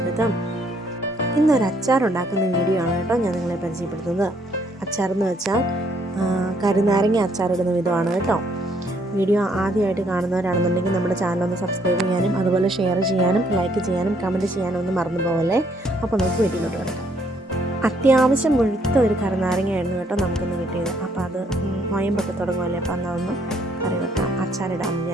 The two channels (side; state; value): both; normal; correlation 0.68